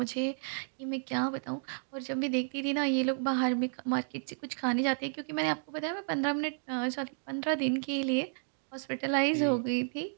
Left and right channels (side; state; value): left; silent; digital silence